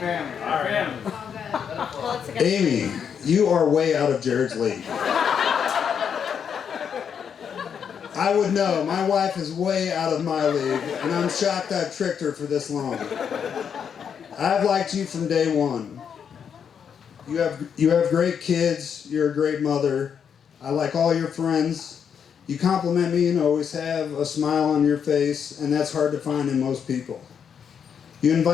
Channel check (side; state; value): right; quieter; 7.5 dB